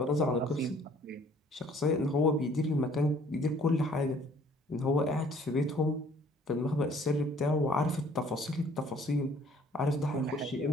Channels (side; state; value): both; normal; correlation 0.57